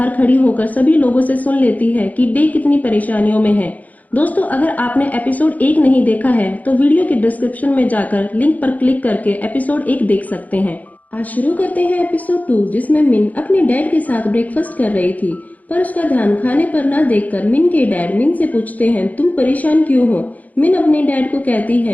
खड़ी होकर सभी लोगों से सुन लेती है कि डे कितनी परेशानियों में है। दोस्तों, अगर आपने एपिसोड 1 नहीं देखा है तो वीडियो के डिस्क्रिप्शन में जाकर लिंक पर क्लिक करके एपिसोड 1 देख सकते हैं। आज शुरू करते हैं एपिसोड 2, जिसमें मिन अपने डैड के साथ ब्रेकफास्ट कर रही थी, पर उसका ध्यान खाने पर न देखकर मिन के डैड मिन से पूछते हैं, तुम परेशान क्यों हो? मिन अपने डैड को कहती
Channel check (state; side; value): late; right; 0.077 ms